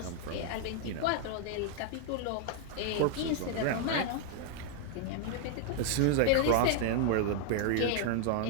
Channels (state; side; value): different; both; correlation 0.00